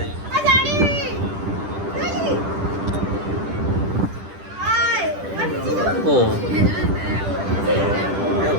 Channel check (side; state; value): left; late; 10 ms